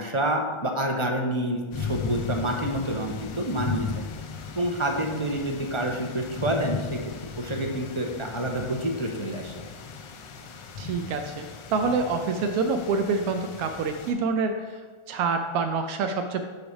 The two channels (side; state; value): right; late; 1.4 ms